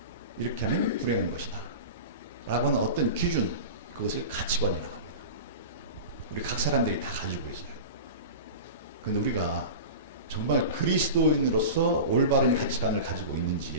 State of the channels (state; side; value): inverted; both; correlation -0.30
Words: 이렇게 하면 불행한 것이다. 라고 하는 어떤 기준, 그것을 가치관이라고 합니다. 우리 각 사람들이 다 가지고 있어요. 그런데 우리가 정말 그리스도인으로서 올바른 가치관을 가지고